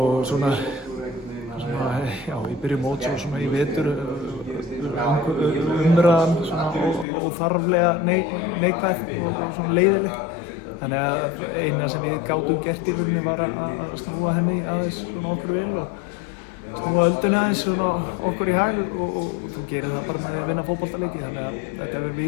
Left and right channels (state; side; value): drops out; right; at 7.1 s